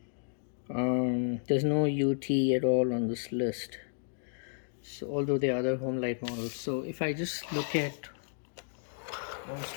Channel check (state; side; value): silent; right; digital silence